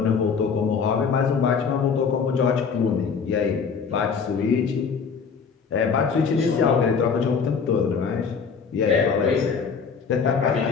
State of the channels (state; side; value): quieter; right; 5.8 dB